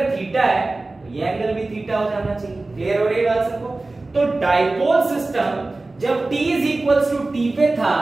थीटा है तो ये एंगल भी थीटा हो जाना चाहिए। क्लियर हो रही है बात सबको? तो डाइपोल सिस्टम जब t is equals to t पे था,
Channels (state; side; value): quieter; left; 3.2 dB